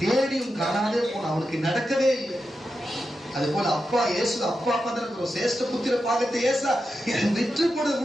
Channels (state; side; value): normal; both; correlation 0.89